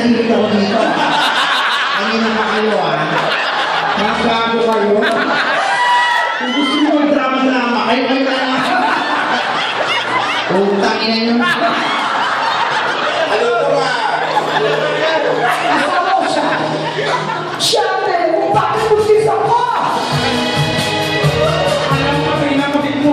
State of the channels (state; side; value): identical; both; correlation 1.00